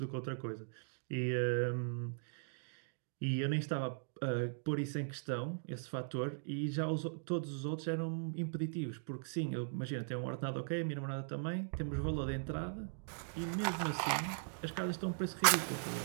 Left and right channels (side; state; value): left; silent; digital silence